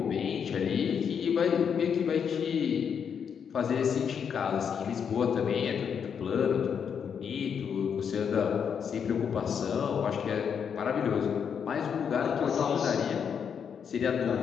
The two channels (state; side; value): quieter; right; 7.3 dB